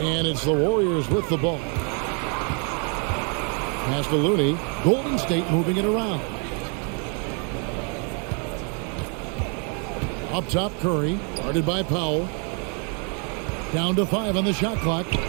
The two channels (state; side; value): quieter; left; 38.2 dB